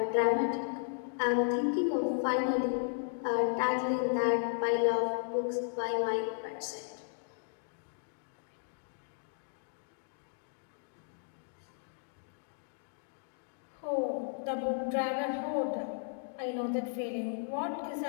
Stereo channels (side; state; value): right; silent; digital silence